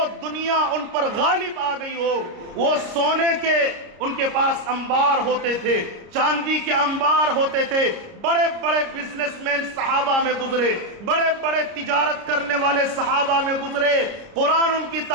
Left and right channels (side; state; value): left; late; 30 ms